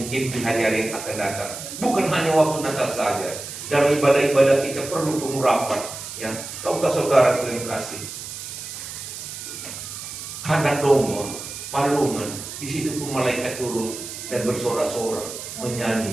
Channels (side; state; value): right; noise; hiss, 9 dB below the sound